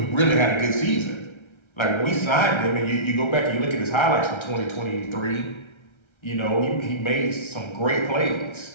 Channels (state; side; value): late; right; 1.3 ms